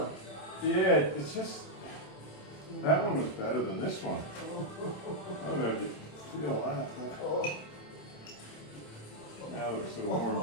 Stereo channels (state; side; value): late; right; 27 ms